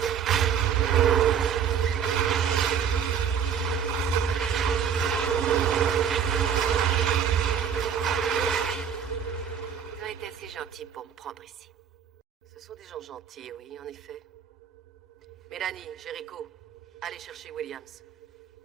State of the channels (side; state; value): left; quieter; 7.8 dB